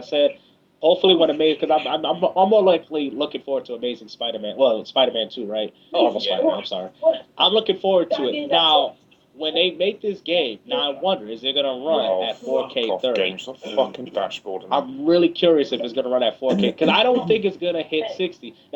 hopefully when Amazing, because I'm more likely looking forward to Amazing Spider-Man. Well, Spider-Man 2, right? Oh Marvel yeah. Spider-Man. I'm sorry. I'm looking forward to it. Now, when they make this game, now I wonder, is it gonna run Oh, at fuck 4K off, 30? games. The fucking dashboard. I'm really curious if it's gonna run at 4K because I don't think it's gonna hit 60.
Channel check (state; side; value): identical; both; correlation 1.00